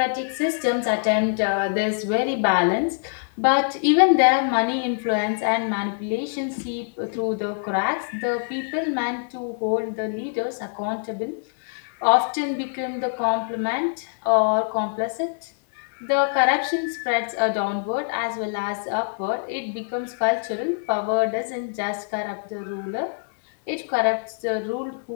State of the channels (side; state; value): right; silent; digital silence